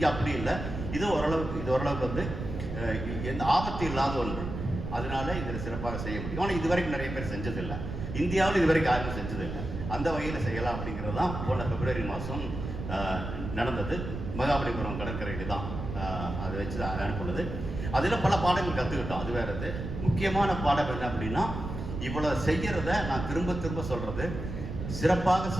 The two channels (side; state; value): right; noise; rumble, 6 dB below the sound